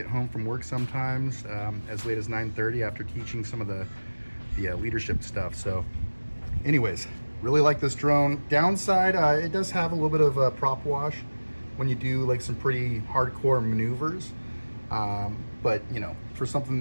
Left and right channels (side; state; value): both; inverted; correlation -1.00